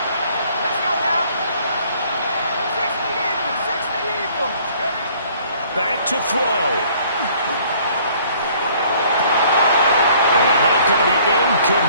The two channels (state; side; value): inverted; both; correlation -0.58